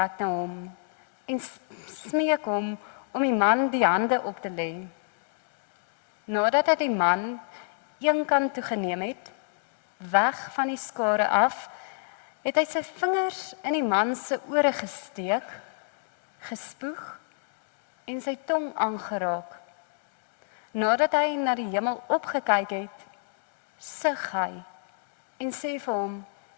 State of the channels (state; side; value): silent; right; digital silence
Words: na hom en smeek hom om die man die hande op te lê. Nadat hy die man een kant toe geneem het, weg van die skare af, het hy sy vingers in die man se ore gesteek, gespoeg en sy tong aangeraak. Nadat hy na die hemel opgekyk het, sug hy en sê vir hom,